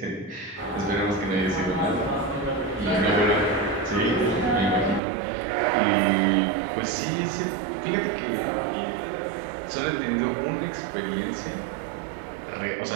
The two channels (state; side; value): drops out; left; at 5.0 s